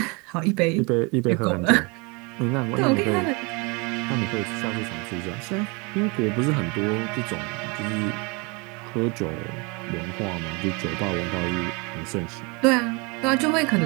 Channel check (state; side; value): quieter; left; 29.4 dB